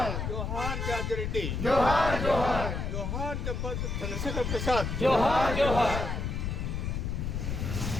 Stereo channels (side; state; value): left; noise; rumble, 2 dB below the sound